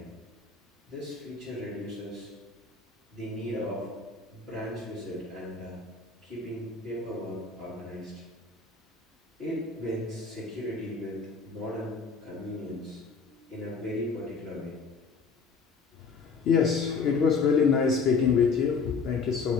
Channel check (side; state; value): right; quieter; 4.9 dB